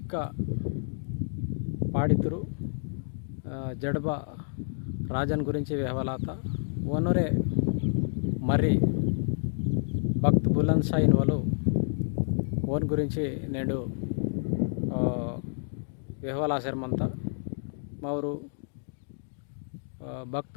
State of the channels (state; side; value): silent; right; digital silence